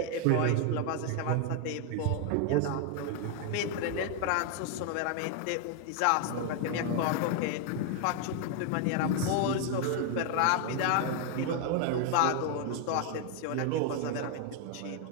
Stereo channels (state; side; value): different; both; correlation 0.00